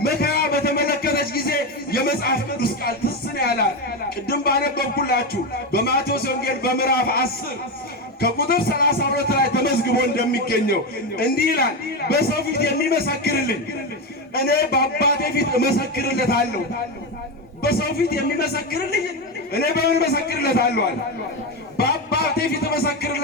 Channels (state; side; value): normal; both; correlation 0.14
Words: መከራ በተመለከተች ጊዜ የመጽሐፍ ቅዱስ ቃል ትዝ ነው ያላት። ቅድም ባነበብኩላችሁ በማቴዎስ ወንጌል በምዕራፍ 10 ከቁጥር 32 ላይ ተመዝግቦ እንደሚገኘው እንዲህ ይላል፣ በሰው ፊት የሚመሰክርልኝ እኔ በአባቴ ፊት እመሰክርለታለሁ። በሰው ፊት የሚመሰክርልኝ እኔ በምን እመሰክርለታለሁ አለ? በአባቴ ፊት